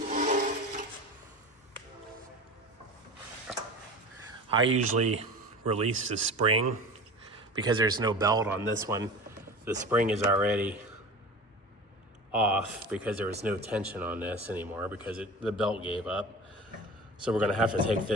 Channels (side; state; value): both; normal; correlation 0.34